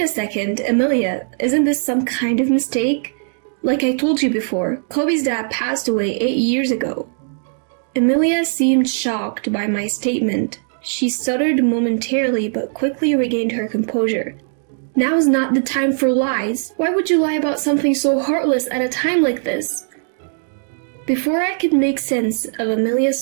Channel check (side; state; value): left; silent; 63 dB below the other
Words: second, Emilia, isn't this some kind of mistake? Like I told you before, Kobe's dad passed away 8 years ago." Emilia seemed shocked by my statement. She stuttered momentarily but quickly regained her composure. "Now is not the time for lies. Why would you lie about something so heartless at a time like this?" Before I could make sense of Emilia's